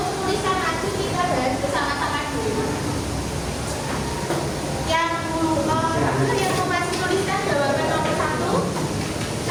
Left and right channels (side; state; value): both; identical; correlation 1.00